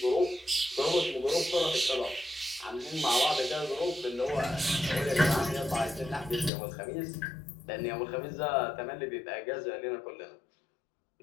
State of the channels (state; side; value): drops out; right; at 6.5 s